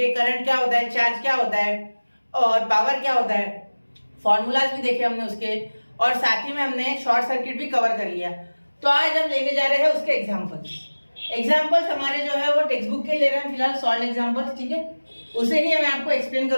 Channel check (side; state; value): both; inverted; correlation -1.00